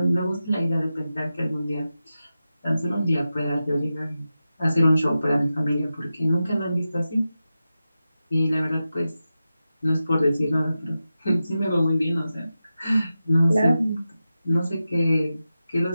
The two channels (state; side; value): inverted; both; correlation -0.92